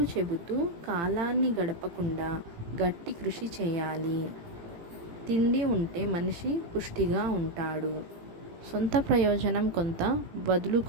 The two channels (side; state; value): left; late; 18 ms